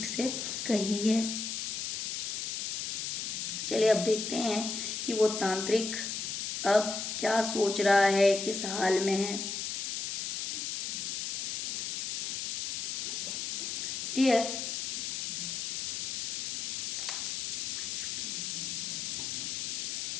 से कही है। चलिए अब देखते हैं कि वो तांत्रिक अब क्या सोच रहा है, किस हाल में है। डियर,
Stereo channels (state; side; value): noise; left; hiss, 2 dB below the sound